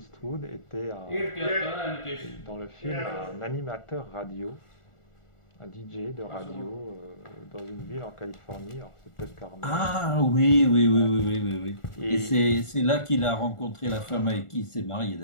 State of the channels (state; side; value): late; right; 1.4 ms